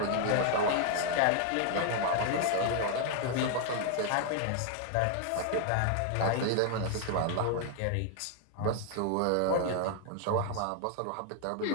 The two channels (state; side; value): different; both; correlation 0.00